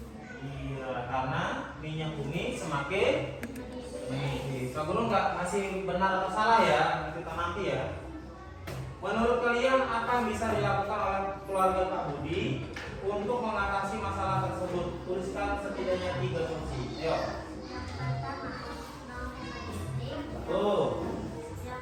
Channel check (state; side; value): identical; both; correlation 1.00